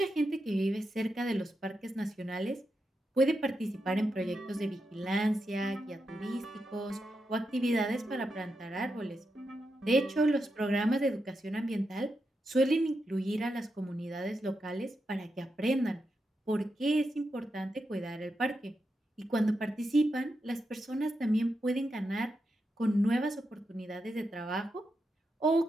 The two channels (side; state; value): both; normal; correlation 0.86